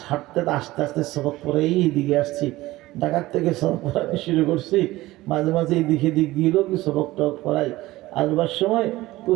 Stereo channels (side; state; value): left; quieter; 17.9 dB